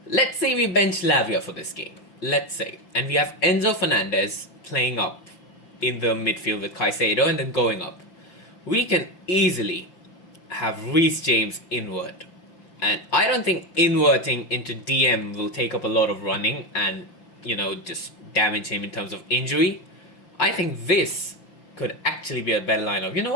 Let's say we bench Lavia for this game. let's say, and we have Enzo Fernandez playing up in the midfield with Caicedo and then going up, we can easily have Reece James invert. And I don't think inverting into DM will take up a lot of running and, just damage him in terms of injury. I think this could actually be a better lineup. You know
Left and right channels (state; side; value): late; right; 5.8 ms